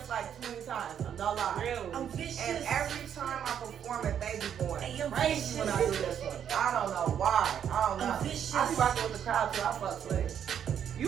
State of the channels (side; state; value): left; quieter; 8.9 dB